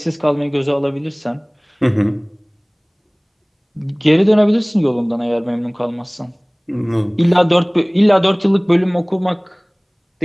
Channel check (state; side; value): identical; both; correlation 1.00